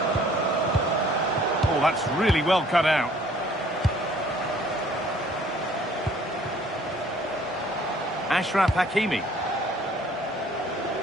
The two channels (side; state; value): both; normal; correlation 0.57